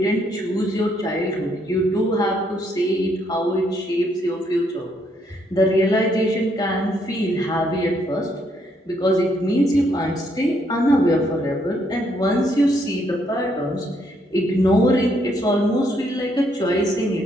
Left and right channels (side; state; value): both; normal; correlation 0.72